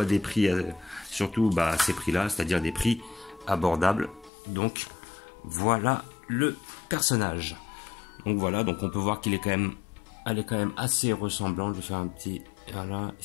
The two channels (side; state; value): right; drops out; at 4.3 s